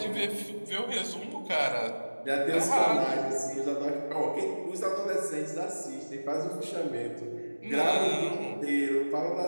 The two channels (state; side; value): inverted; both; correlation -1.00